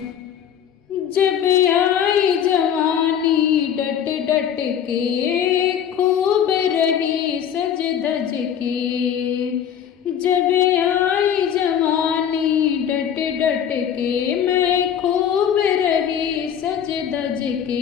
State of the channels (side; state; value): right; quieter; 9.0 dB